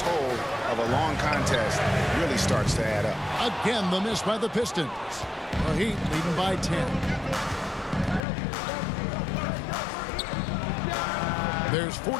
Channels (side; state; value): right; drops out; at 8.2 s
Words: of a long contest really starts to add up. Again, the miss by the Pistons. The Heat leading by 10. There's